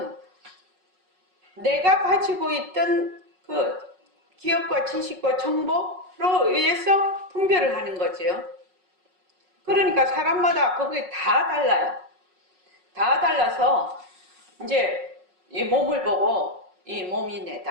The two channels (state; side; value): late; left; 5.4 ms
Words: 내가 가지고 있던 그 기억과 지식과 정보로 의해서 분별을 하는 거지요. 그러니까 사람마다 그게 다 달라요. 다 달라서 이제 이 몸을 보고 이 몸이